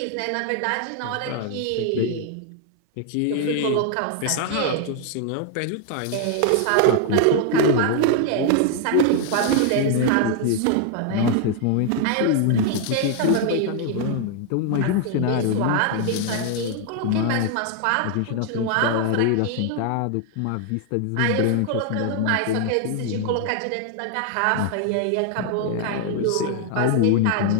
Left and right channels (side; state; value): both; different; correlation 0.00